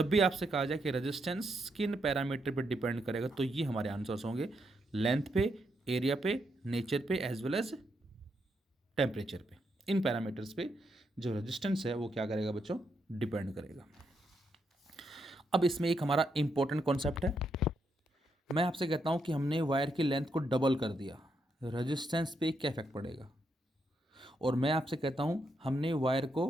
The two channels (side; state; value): both; normal; correlation 0.80